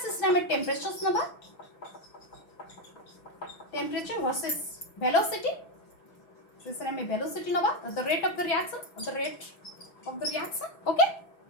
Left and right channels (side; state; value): right; late; 6.0 ms